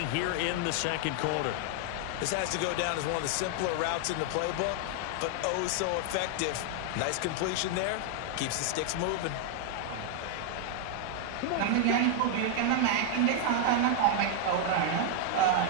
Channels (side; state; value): both; different; correlation 0.00